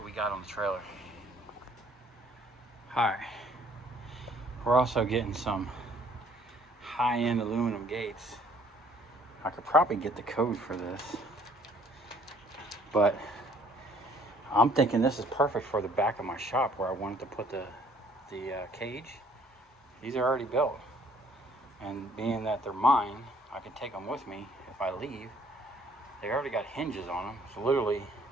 we got on the trailer. All right. We're also getting some high-end aluminum gates. I could probably get the code for this, but I'm thinking this is perfect for the back of my shop where I wanted to put the cage. These are already built, and being that they're mine, I can take them with me if I leave. They already got hinges on them, so literally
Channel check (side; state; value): both; normal; correlation 0.60